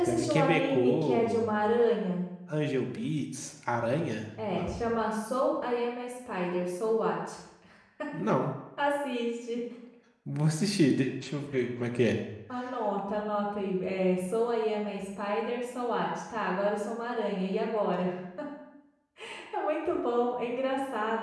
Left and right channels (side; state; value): both; identical; correlation 1.00